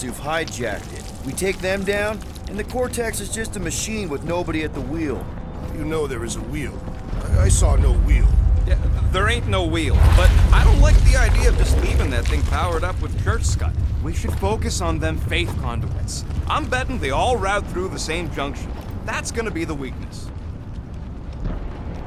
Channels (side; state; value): both; identical; correlation 1.00